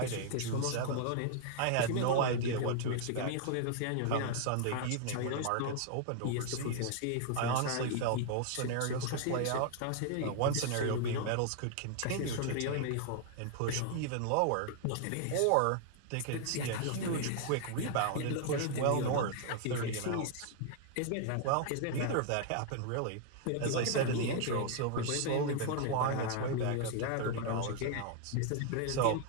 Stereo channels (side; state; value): both; different; correlation 0.00